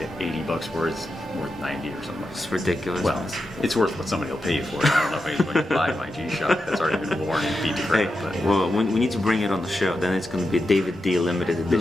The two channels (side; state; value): both; normal; correlation 0.88